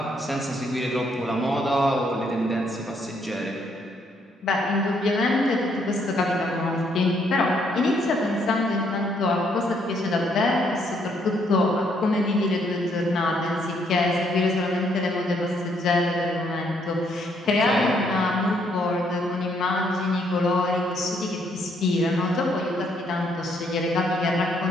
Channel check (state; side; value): normal; both; correlation 0.71